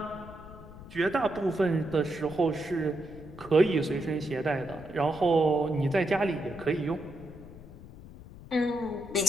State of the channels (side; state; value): left; noise; rumble, 16 dB below the sound